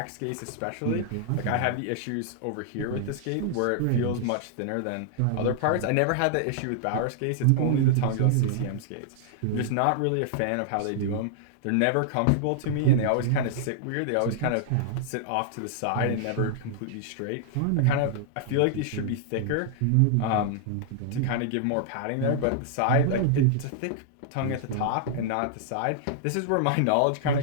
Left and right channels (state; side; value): different; both; correlation -0.01